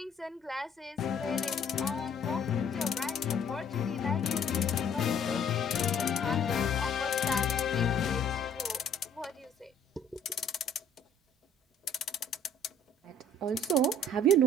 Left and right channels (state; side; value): normal; both; correlation 0.57